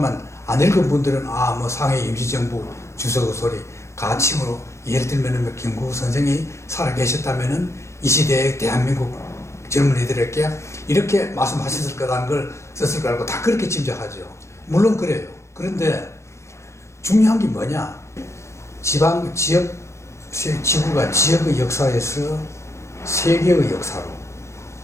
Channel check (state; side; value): late; right; 0.14 ms